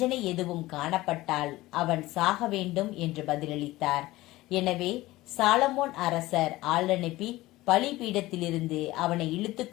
எதுவும் காணப்பட்டால் அவன் சாக வேண்டும் என்று பதிலளித்தார். எனவே சாலமோன் அரசர் ஆள் அனுப்பி பலிபீடத்திலிருந்து அவனை இழுத்து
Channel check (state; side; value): quieter; right; 18.1 dB